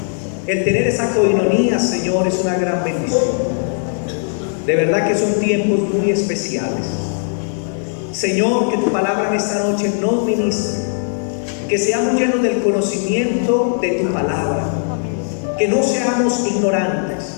el tener esa coinonía, Señor, es una gran bendición. De verdad que son tiempos muy especiales. Señor, que tu palabra en esta noche nos ministre, que seamos llenos del conocimiento de tu palabra, que no seamos ignorantes,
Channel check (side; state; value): right; silent; 64 dB below the other